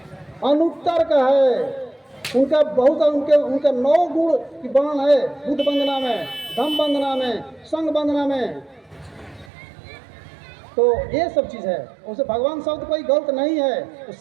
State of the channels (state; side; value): drops out; left; at 9.5 s